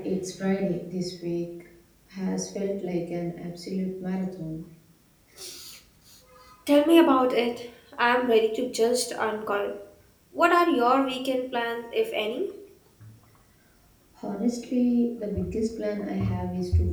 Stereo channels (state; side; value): identical; both; correlation 1.00